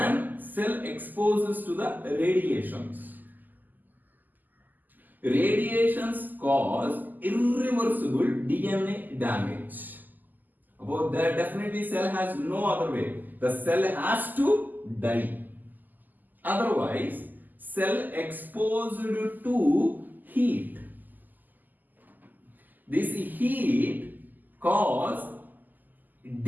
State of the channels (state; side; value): late; left; 0.085 ms